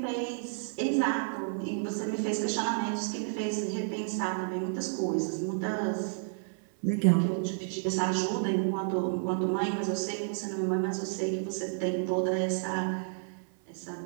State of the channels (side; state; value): left; silent; 57 dB below the other